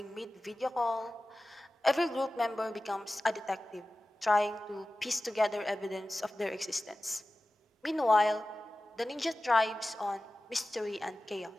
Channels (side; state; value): both; normal; correlation 0.96